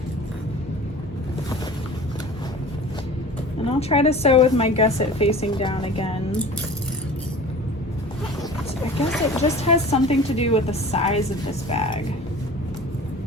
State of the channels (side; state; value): both; normal; correlation 0.41